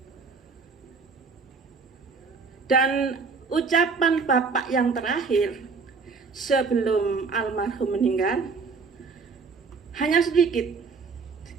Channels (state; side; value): quieter; left; 4.8 dB